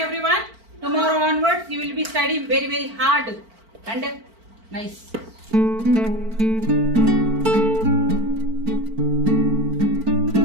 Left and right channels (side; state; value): left; late; 4.5 ms